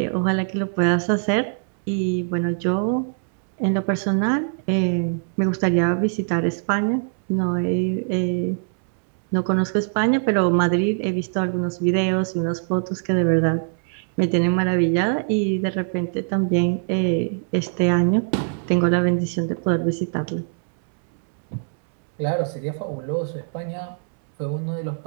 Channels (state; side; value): silent; left; 64 dB below the other